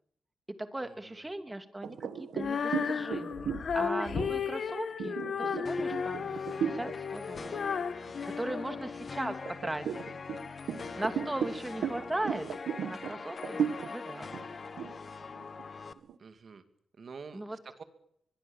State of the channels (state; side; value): normal; both; correlation 0.80